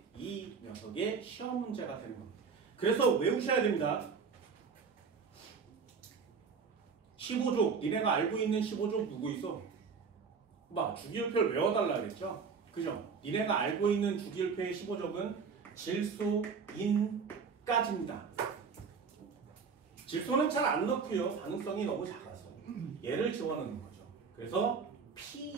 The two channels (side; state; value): left; quieter; 5.6 dB